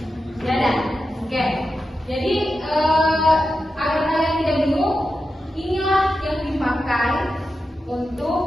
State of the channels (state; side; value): normal; both; correlation 0.90